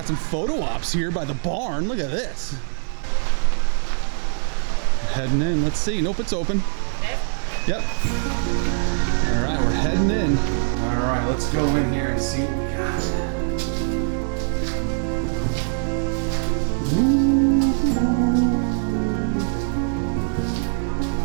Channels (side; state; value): left; silent; digital silence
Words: some photo ops here by the barn. Look at this. We're heading in. Let's see. Nope, it's open. Yep. All right, we're heading in. All right, let's go in here and see what we got.